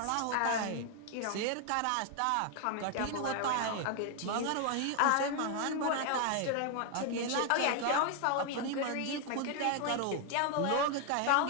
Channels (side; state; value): both; different; correlation 0.01